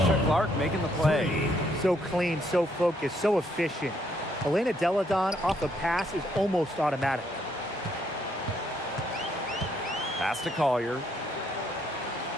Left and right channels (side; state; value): both; normal; correlation 0.71